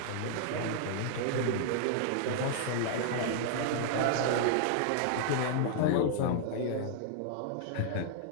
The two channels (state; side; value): different; both; correlation -0.01